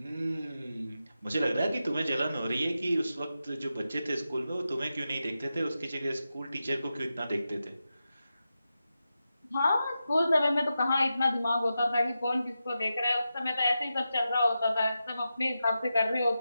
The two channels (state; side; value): inverted; both; correlation -0.90